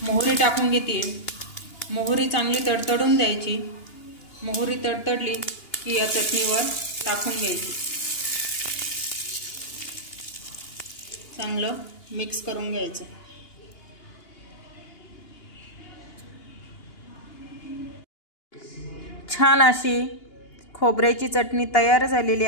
मोहरी टाकून घेते। मोहरी चांगली तडतडून द्यायची। मोहरी तडतडली की या चटणीवर टाकून घ्यायची, चांगलं मिक्स करून घ्यायचं। छान अशी खोबऱ्याची चटणी तयार झालेली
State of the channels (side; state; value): right; late; 2.8 ms